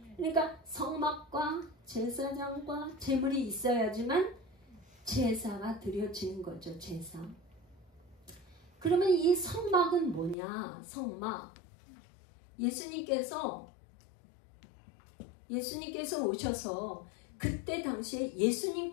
그러니까 성막과 제사장과 제물이 있어야지만 제사가 드려지는 거죠. 제사. 그러면 이 성막은 뭐냐? 성막. 예수님께서 오셔서 그때 당시에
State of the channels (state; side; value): drops out; right; at 10.4 s